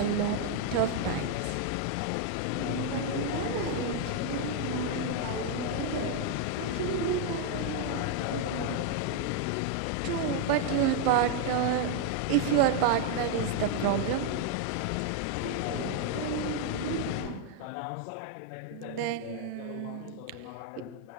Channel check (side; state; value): both; different; correlation 0.00